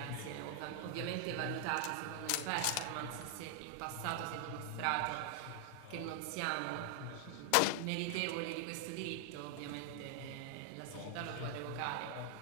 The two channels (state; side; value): different; both; correlation 0.00